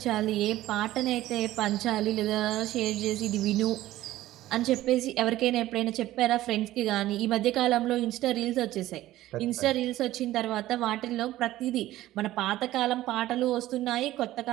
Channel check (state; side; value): quieter; left; 15.2 dB